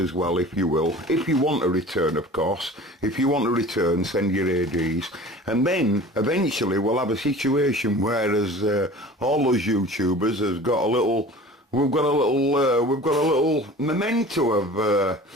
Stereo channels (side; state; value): both; normal; correlation 0.42